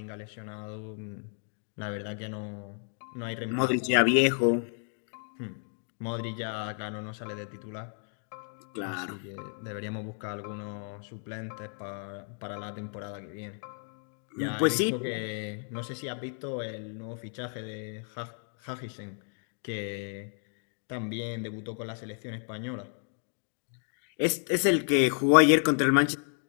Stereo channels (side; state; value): right; silent; 56 dB below the other